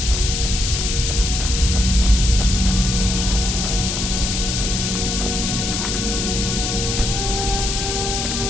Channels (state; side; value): noise; left; hiss, 2 dB below the sound